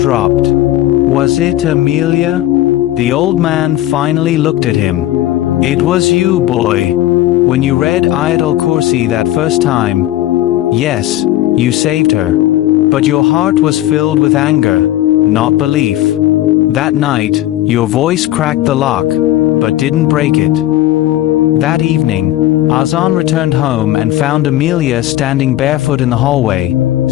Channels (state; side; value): quieter; right; 14.4 dB